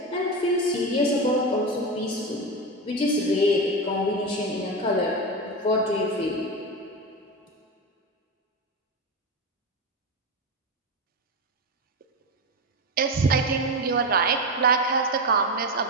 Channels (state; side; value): normal; both; correlation 0.17